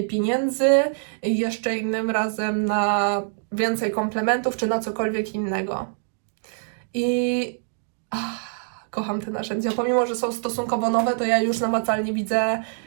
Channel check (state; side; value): silent; left; digital silence